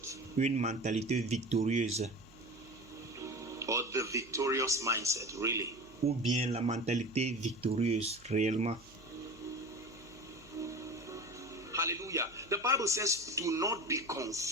Une mentalité victorieuse. Or the victorious mindset, really. Ou bien la mentalité victorieuse, réellement. Hallelujah. The Bible says, do not be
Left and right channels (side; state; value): right; noise; hum, 25 dB below the sound